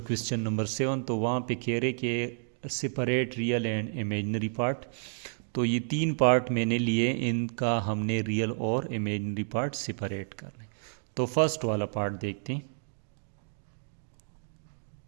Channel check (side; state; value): left; silent; digital silence